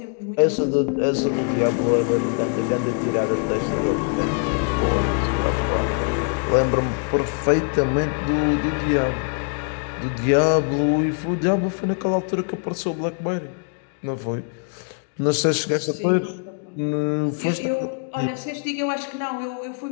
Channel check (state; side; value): quieter; right; 38.9 dB